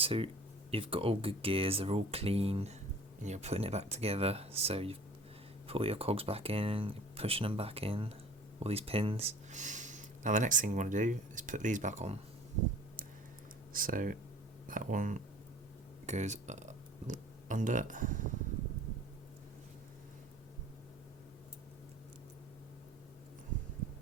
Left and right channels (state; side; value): normal; both; correlation 0.47